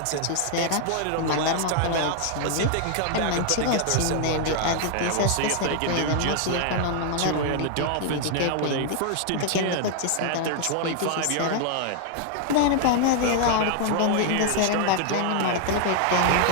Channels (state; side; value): different; both; correlation 0.00